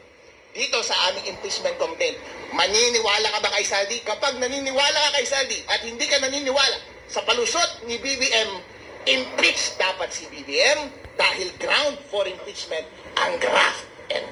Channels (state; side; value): identical; both; correlation 1.00